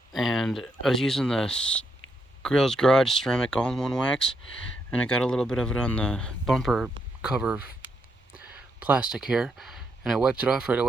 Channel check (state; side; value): normal; both; correlation 0.79